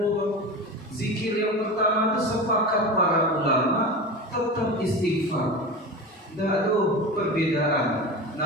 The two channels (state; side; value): normal; both; correlation 0.28